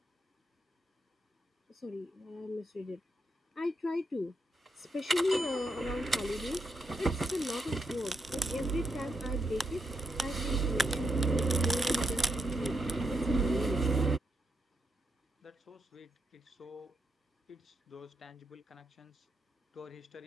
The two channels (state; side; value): normal; both; correlation 0.81